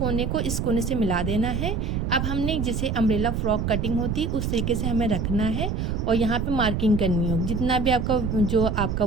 को इस कोने से मिला देना है। अब हमने जैसे अम्ब्रेला फ्रॉक कटिंग होती है उस तरीके से हमें रखना है और यहाँ पे मार्किंग करनी होगी। जितना भी आपका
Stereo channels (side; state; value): right; noise; rumble, 1 dB below the sound